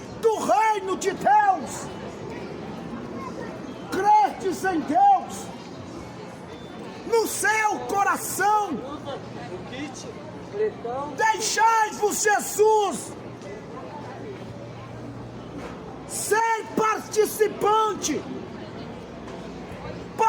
do reino de Deus. Credes em Deus no seu coração. Deixai-vos Jesus ser participante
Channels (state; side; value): identical; both; correlation 1.00